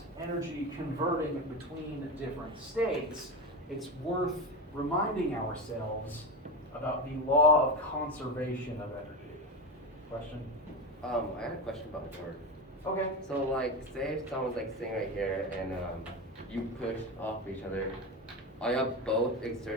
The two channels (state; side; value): normal; both; correlation 0.19